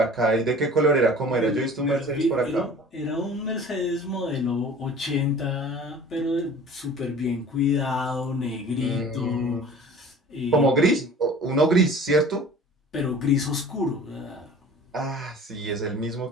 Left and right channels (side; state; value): both; normal; correlation 0.44